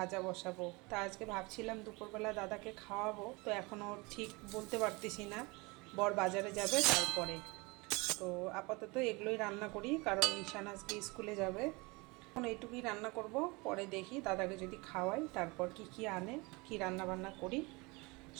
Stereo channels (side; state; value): left; quieter; 26.1 dB